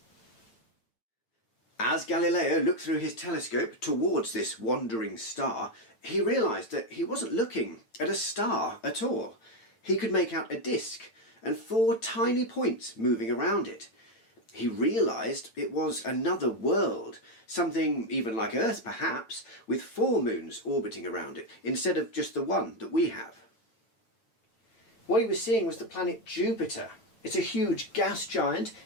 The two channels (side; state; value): right; late; 8.9 ms